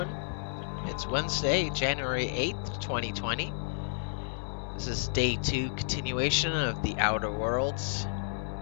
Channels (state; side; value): silent; right; digital silence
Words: It's Wednesday, January 8th, 2020. This is day 2 continuation of The Outer Worlds.